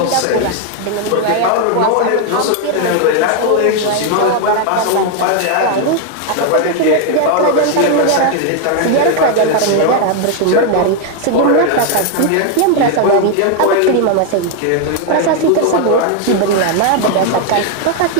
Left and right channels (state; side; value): different; both; correlation 0.01